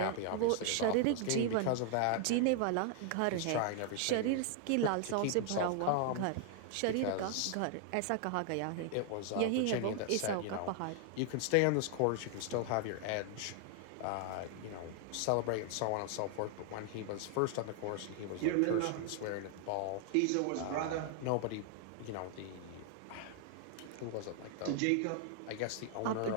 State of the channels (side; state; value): both; different; correlation 0.00